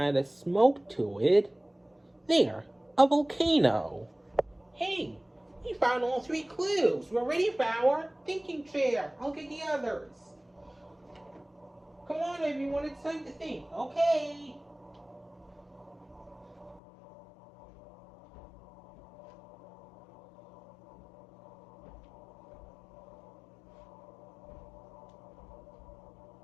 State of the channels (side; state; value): right; drops out; at 16.8 s